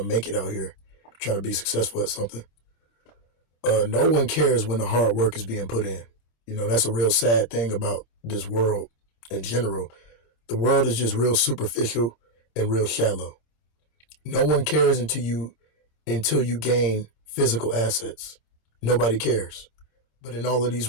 make it out here, trying to be successful at something. No one cares when the hard work is being put in. You know, that's a real sad thing about this world in general. The world is just real superficial and real shallow. No one cares until you gain physical assets. Nobody cares. But in all of these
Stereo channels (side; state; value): right; late; 26 ms